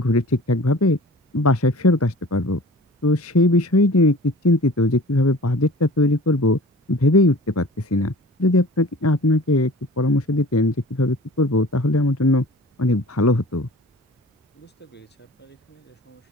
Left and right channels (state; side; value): normal; both; correlation 0.43